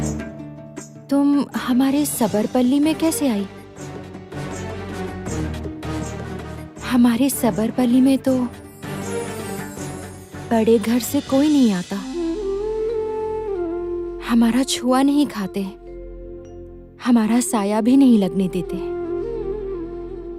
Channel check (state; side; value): identical; both; correlation 1.00